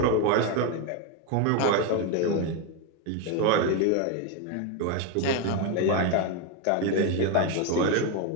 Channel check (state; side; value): different; both; correlation 0.02